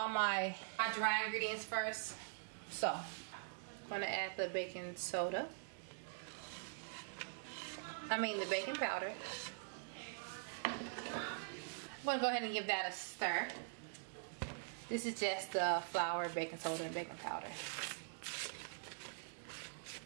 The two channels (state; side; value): silent; left; digital silence